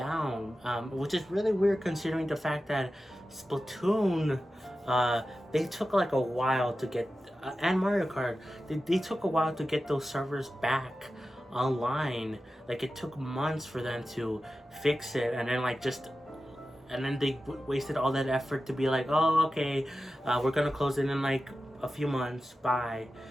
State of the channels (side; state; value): both; normal; correlation 0.93